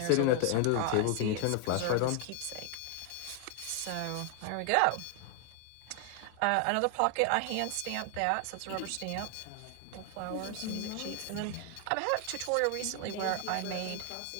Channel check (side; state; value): both; different; correlation 0.00